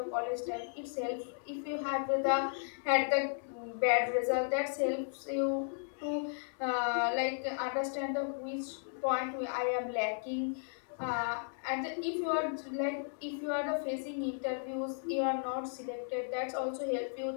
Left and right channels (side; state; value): right; silent; digital silence